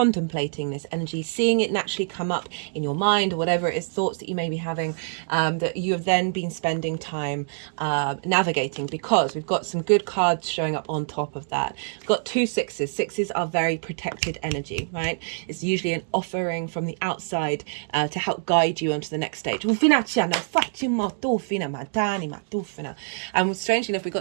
this energy, seeing it naturally come up in your mind, or whatever it is, thoughts that you may be having, that you have then been spending time navigating, because we've got some good cards showing up on top of that. We've got 2 sixes. Sixes are very protected energy, right? It's usually an offering from the outside to help guide you onto the next stage. And strangely enough, we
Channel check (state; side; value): silent; left; digital silence